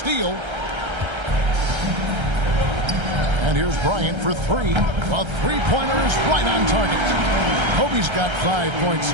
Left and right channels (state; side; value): late; left; 1.3 ms